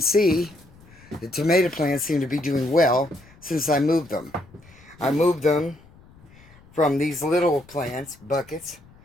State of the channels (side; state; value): left; noise; rumble, 26 dB below the sound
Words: see, the tomato plants seem to be doing well since I moved them. I moved them from these little plants, buckets,